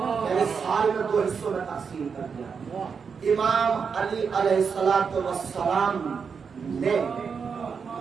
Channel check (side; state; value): left; quieter; 6.0 dB